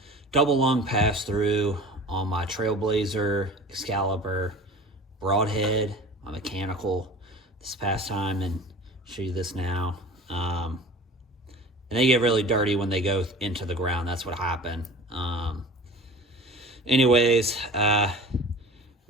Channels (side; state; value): both; normal; correlation 0.41